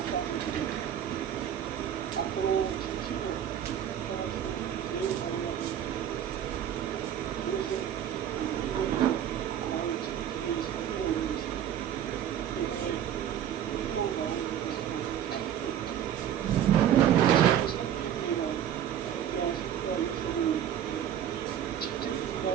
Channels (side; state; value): left; quieter; 10.1 dB